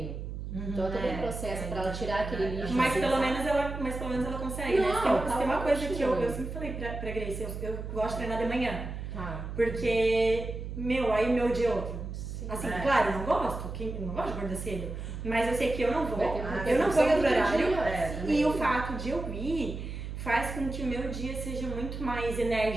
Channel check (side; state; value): right; noise; hum, 7 dB below the sound